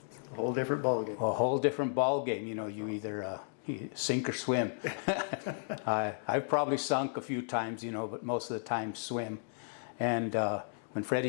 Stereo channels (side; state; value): right; silent; digital silence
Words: whole different ballgame. A whole different ballgame, you know. You either you sink or swim. I've probably sunk a few times, you know, but most of the time swim. And when